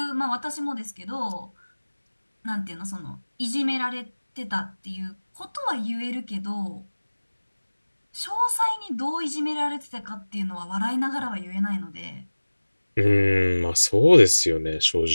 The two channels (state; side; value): inverted; both; correlation -1.00